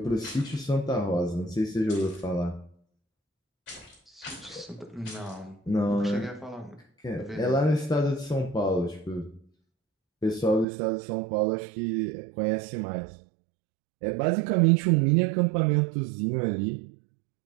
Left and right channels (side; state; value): left; drops out; at 10.7 s